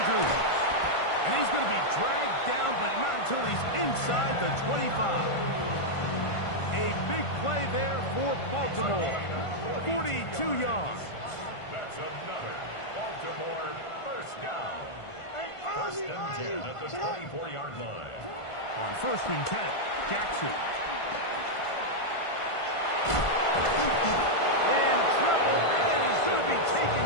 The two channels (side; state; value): right; late; 1.5 ms